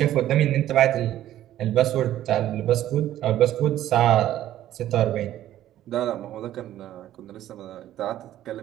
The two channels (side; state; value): left; quieter; 12.9 dB